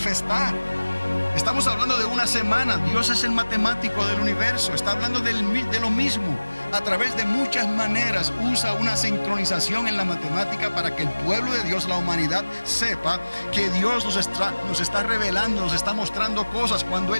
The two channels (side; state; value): both; inverted; correlation -1.00